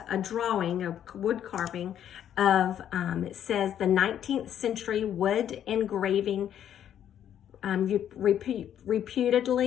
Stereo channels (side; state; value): right; quieter; 10.1 dB